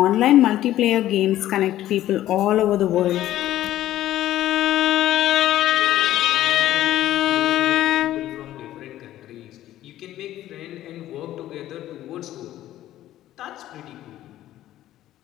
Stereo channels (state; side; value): quieter; right; 13.6 dB